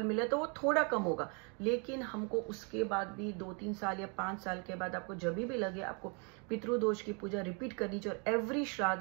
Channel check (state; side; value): quieter; left; 35.0 dB